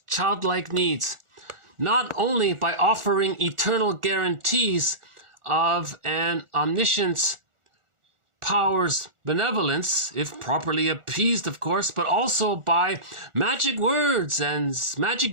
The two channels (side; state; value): left; late; 1.4 ms